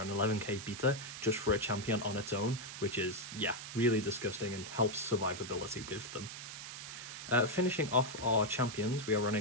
an 11k beta just for a champion on its own, which is, yeah, really disgusting and helps survivability with them. Finishing off our champions, we are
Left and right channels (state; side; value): noise; right; hiss, 10 dB below the sound